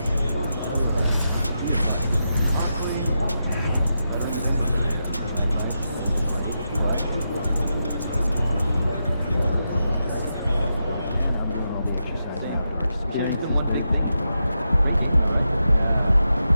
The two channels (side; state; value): both; inverted; correlation -0.87